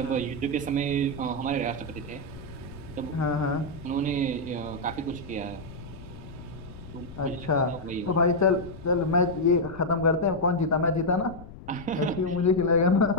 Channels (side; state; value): left; noise; rumble, 15 dB below the sound